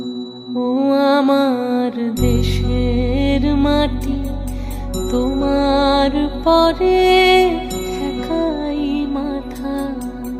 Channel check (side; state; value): both; identical; correlation 1.00